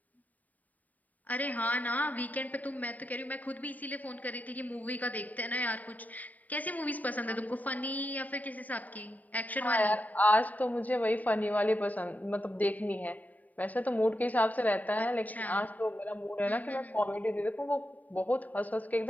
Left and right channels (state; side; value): late; right; 0.076 ms